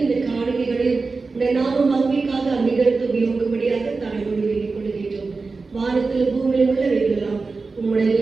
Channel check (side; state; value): left; quieter; 4.1 dB